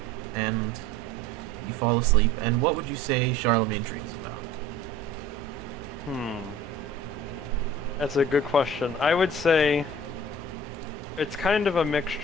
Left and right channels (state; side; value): normal; both; correlation 0.46